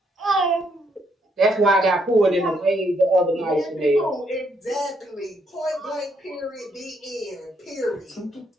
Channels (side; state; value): both; normal; correlation 0.73